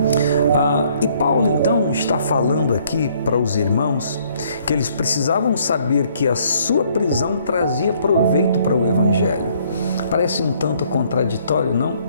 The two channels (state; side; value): inverted; both; correlation -0.64